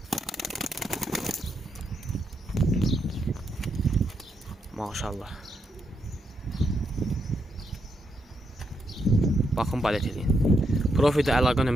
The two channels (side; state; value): both; normal; correlation 0.80